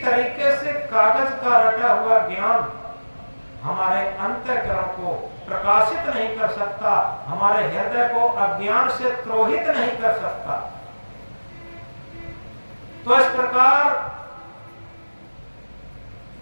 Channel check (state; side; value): inverted; both; correlation -1.00